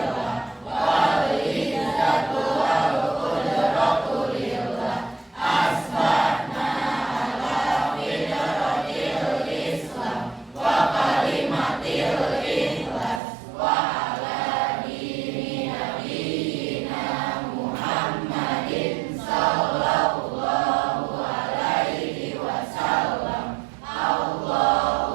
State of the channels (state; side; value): drops out; left; at 13.2 s